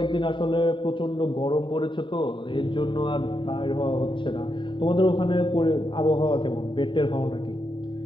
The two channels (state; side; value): late; right; 0.24 ms